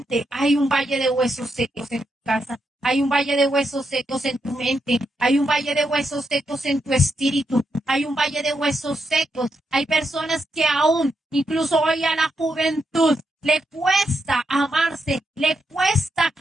hay un valle de huesos secos en tu casa, hay un valle de huesos secos en tu mente, hay un valle de huesos secos en tu espíritu, hay un valle de huesos secos. Hay personas que aún, incluso hoy a la juventud, le cuesta amarse, le cuesta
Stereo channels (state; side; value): normal; both; correlation 0.83